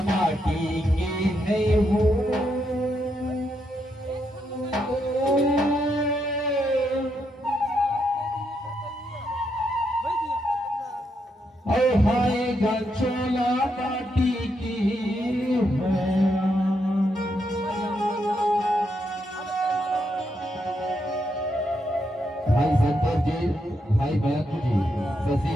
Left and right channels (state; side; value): normal; both; correlation 0.80